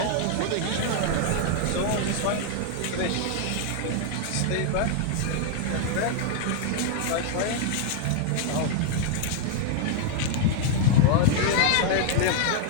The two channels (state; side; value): different; both; correlation 0.00